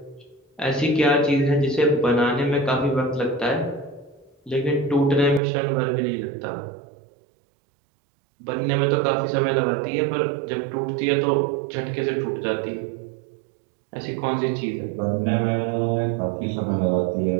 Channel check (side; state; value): left; drops out; at 5.4 s